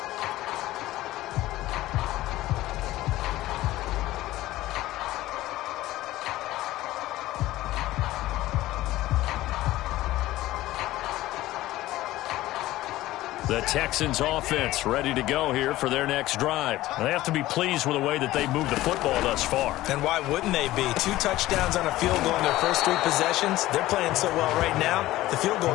The Texans offense ready to go here for their next drive. They have to be pleased with the way that they've moved the football thus far. And why wouldn't they be? 2 touchdowns on a field goal in their first 3 possessions. They're playing so well right now, the field goal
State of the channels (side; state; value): right; quieter; 16.3 dB